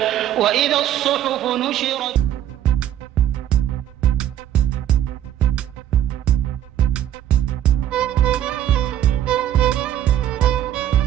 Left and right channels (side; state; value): left; quieter; 11.0 dB